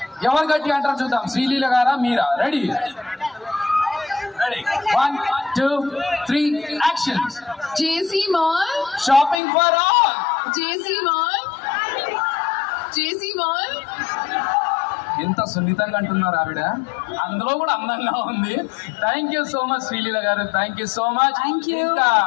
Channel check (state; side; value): drops out; right; at 9.4 s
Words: ఎవరు గట్టి అంటారు చూద్దాం, శ్రీలీల గారా మీరా? Ready? 1, 2, 3 action. JC mall, shopping for all. JC mall, JC mall. ఎంత సున్నితంగా అంటున్నారు ఆవిడ, అందులో కూడా అందంగా ఉంది. Thank you so much Sreeleela గారు, thank you so much. Thank you.